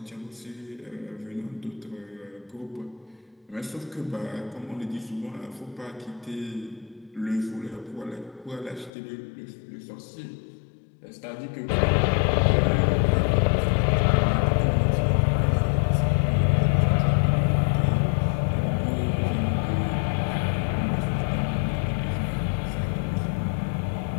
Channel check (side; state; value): right; drops out; at 8.9 s